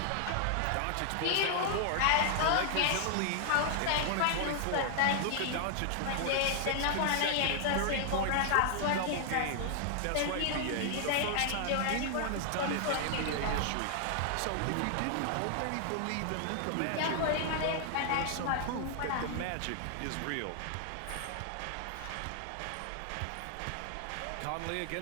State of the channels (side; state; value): both; different; correlation 0.00